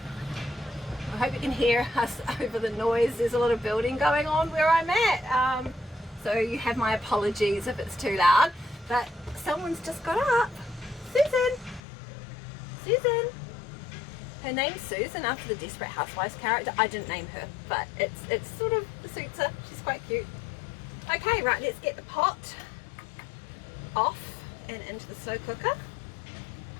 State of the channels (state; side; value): drops out; right; at 11.8 s